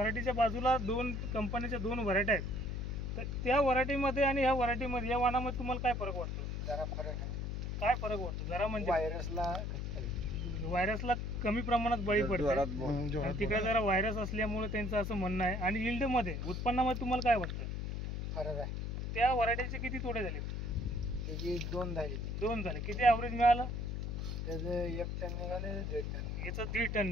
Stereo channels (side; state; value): left; noise; hum, 3 dB below the sound